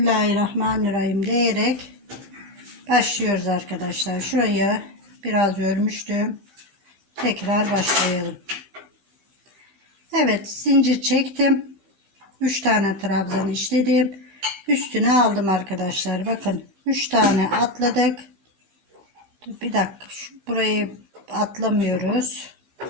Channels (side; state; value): left; late; 15 ms